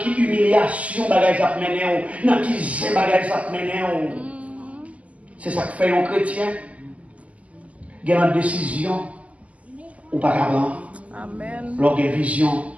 humiliation bagaille ça mener, dans qui zé bagaille ça mener. C'est ça que fait un chrétien. Il y a une décision ou pas avant. Amen. L'on a une vision.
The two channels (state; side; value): late; left; 0.069 ms